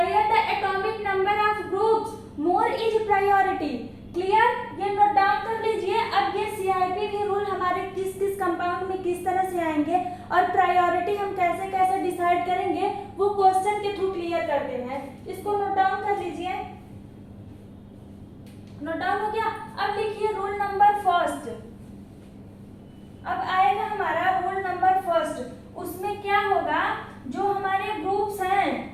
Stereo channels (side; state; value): both; identical; correlation 1.00